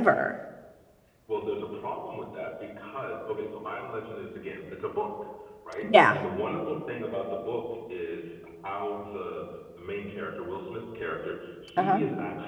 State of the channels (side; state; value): both; identical; correlation 1.00